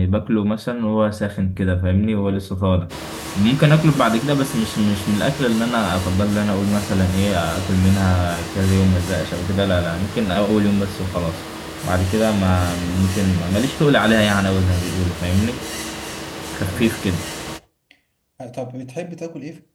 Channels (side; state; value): both; identical; correlation 1.00